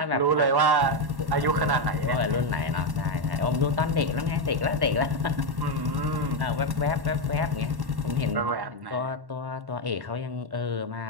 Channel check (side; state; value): left; late; 1.1 ms